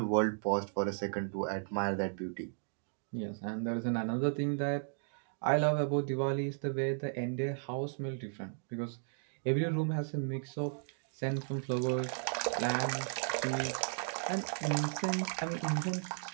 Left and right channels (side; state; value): left; silent; digital silence